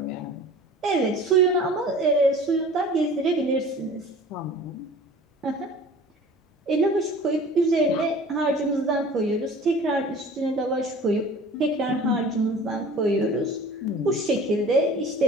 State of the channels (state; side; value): normal; both; correlation 0.44